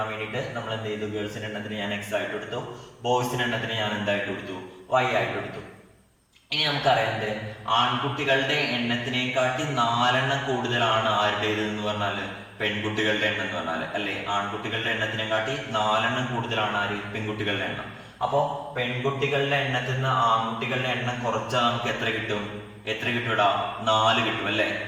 വേണ്ടിയിട്ട് നമ്മൾ എന്ത് ചെയ്തു? ഗേൾസിന്റെ എണ്ണത്തിന് ഞാൻ x ആയിട്ട് കൊടുത്തു, ബോയ്സിന്റെ എണ്ണത്തിന് ഞാൻ എന്തായിട്ട് കൊടുത്തു? y ആയിട്ട് കൊടുത്തു. ഇനി നമുക്കറിയാം, ആൺകുട്ടികളുടെ എണ്ണത്തിനെക്കാട്ടി 4 എണ്ണം കൂടുതലാണ് ആരുടേത് എന്ന് പറഞ്ഞാല് പെൺകുട്ടികളുടെ എണ്ണം എന്ന് പറഞ്ഞാല്, അല്ലെ? ആൺകുട്ടികളുടെ എണ്ണത്തിനെക്കാട്ടി 4 എണ്ണം കൂടുതലാണ് ആര്? പെൺകുട്ടികളുടെ എണ്ണം. അപ്പോ പെൺകുട്ടികളുടെ എണ്ണത്തിൽ നിന്ന് ആൺകുട്ടികളുടെ എണ്ണം കുറച്ചാൽ നമുക്ക് എത്ര കിട്ടും? എത്ര കിട്ടൂടാ? 4 കിട്ടും, അല്ലെ?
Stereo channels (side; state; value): both; identical; correlation 1.00